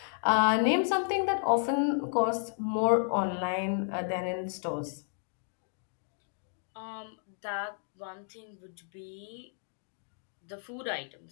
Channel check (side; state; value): right; silent; digital silence